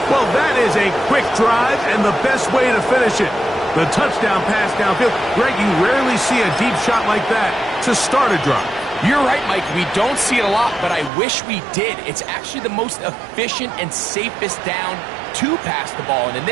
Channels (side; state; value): left; drops out; at 11.1 s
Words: Well, that is a quick drive and the best way to finish it. The touchdown pass downfield. Greg, you rarely see a deep shot like that to start a drive. You're right, Mike. We don't see it a lot, but I wish we did. It's actually the most efficient and safest down to pass the ball. And in